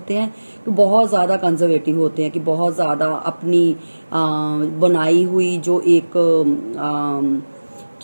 हैं कि बहुत ज़्यादा कंजर्वेटिव होते हैं, कि बहुत ज़्यादा अपनी बनाई हुई जो एक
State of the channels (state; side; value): inverted; both; correlation -1.00